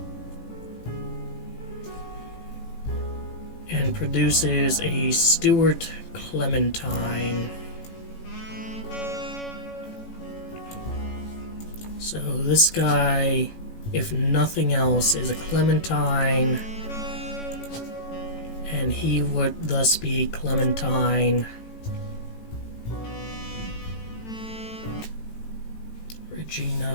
And produces a Stuart Clementine. So this guy, if nothing else, is a Clementine, and he would thus be Clementine.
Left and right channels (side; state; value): right; late; 18 ms